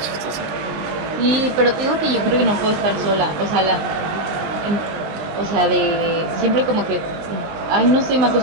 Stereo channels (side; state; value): left; late; 19 ms